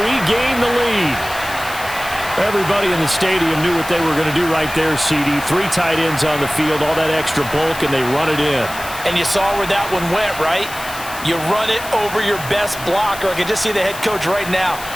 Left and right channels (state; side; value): noise; left; hiss, 13 dB below the sound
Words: the lead. Everybody in the stadium knew what they were going to do right there, CD. 3 tight ends on the field, all that extra bulk, and they run it in. And you saw where that one went, right? You run it over your best blocker. I can just see the head coach right now.